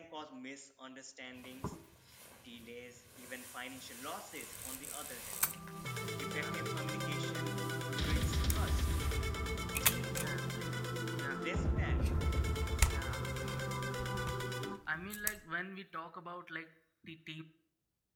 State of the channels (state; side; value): identical; both; correlation 1.00